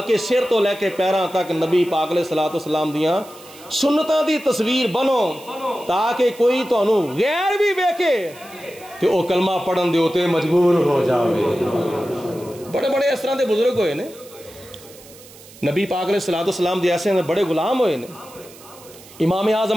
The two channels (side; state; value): right; noise; hiss, 21 dB below the sound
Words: سر تو لے کے پیراں تک نبی پاک علیہ الصلوۃ والسلام دیاں سنتاں دی تصویر بنو تاکہ کوئی تانوں غیر بھی ویکھے تے او کلمہ پڑھن دے اوتے مجبور ہو جاوے. بڑے بڑے اس طرح دے بزرگ ہوئے نے نبی پاک علیہ الصلوۃ والسلام دے ایسے بڑے غلام ہوئے نے. امام